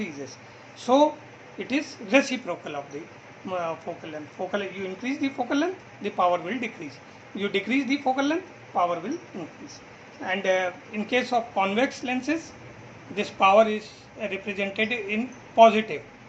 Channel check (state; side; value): identical; both; correlation 1.00